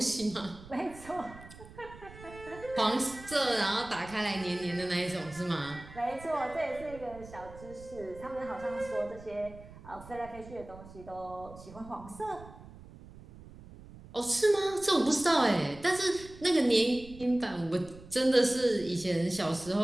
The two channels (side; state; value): right; noise; rumble, 18 dB below the sound